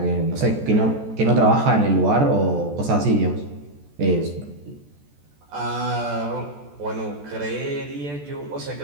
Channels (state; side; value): late; left; 14 ms